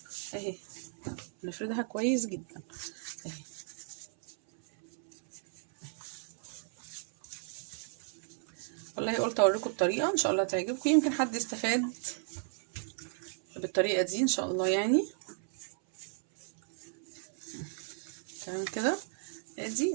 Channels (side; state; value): left; silent; 55 dB below the other